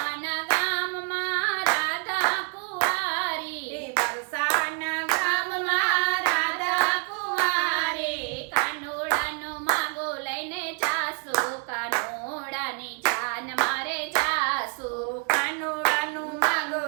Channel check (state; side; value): quieter; left; 36.8 dB